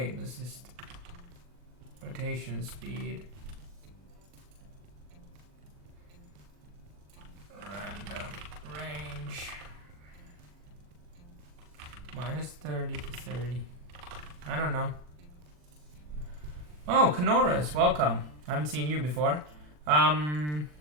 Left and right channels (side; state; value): left; late; 40 ms